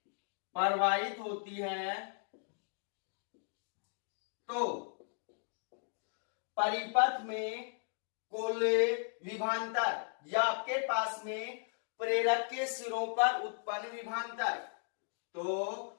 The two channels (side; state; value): right; silent; digital silence